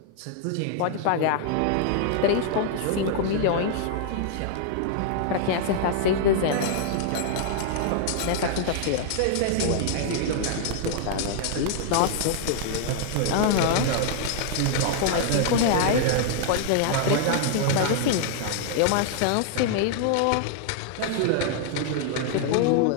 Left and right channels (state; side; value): different; both; correlation -0.01